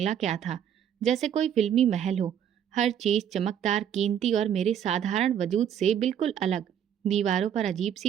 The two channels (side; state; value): left; quieter; 9.3 dB